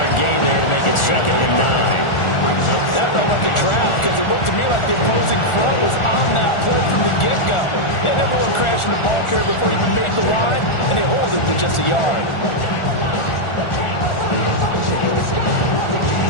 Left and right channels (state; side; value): late; right; 1.4 ms